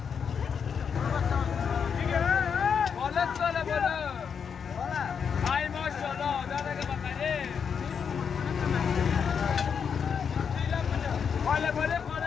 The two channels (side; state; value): right; quieter; 6.8 dB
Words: بالست نوله بوده